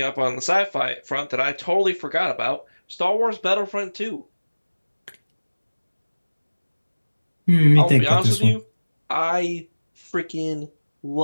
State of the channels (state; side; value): inverted; both; correlation -1.00